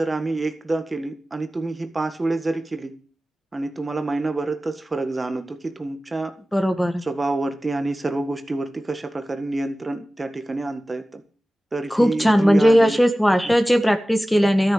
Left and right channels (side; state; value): both; normal; correlation 0.96